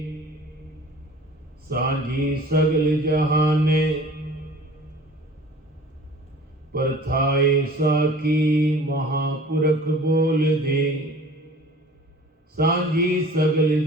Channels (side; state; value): both; normal; correlation 0.46